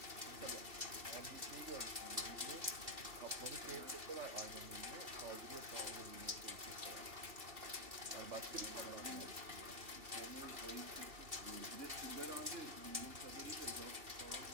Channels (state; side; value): late; left; 2.7 ms